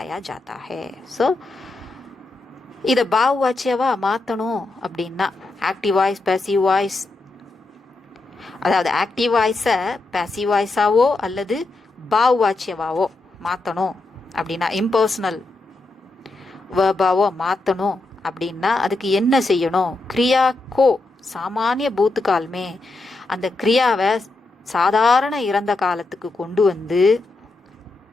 जाता है. ஸோ இதை பாவவாச்சியவா மாற்றணும் அப்படின்னா ஆக்டிவ் வாய்ஸ், பேசிவ் வாய்ஸ், அதாவது ஆக்டிவ் வாய்ஸை பேசிவ் வாய்ஸாவோ அல்லது பாவவாச்சியவாவோ மாற்றணும் அப்படின்னா, இம்பர்சனல் வேர்பாவோ மாற்றணும் அப்படின்னா அதுக்கு என்ன செய்யணும், கிரியா கோ சாமானிய பூத்துக்கால்மே, அந்த கிரியாவை சாதாரண இறந்த காலத்துக்கு கொண்டு வந்து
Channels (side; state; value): right; quieter; 3.2 dB